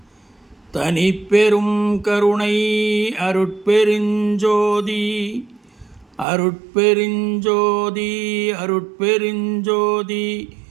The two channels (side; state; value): left; drops out; at 6.2 s